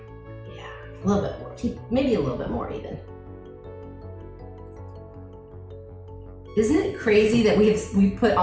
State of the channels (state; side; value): identical; both; correlation 1.00